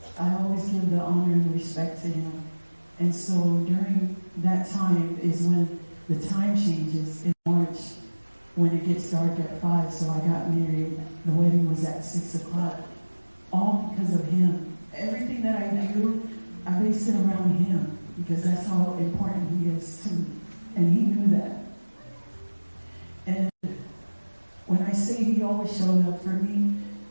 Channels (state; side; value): inverted; both; correlation -1.00